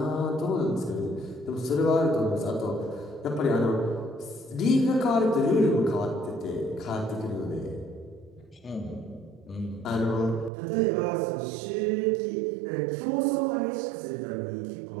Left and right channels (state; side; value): drops out; left; at 10.5 s